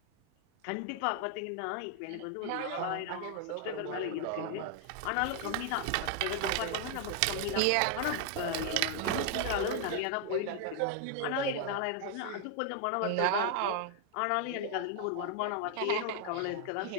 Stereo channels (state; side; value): different; both; correlation 0.00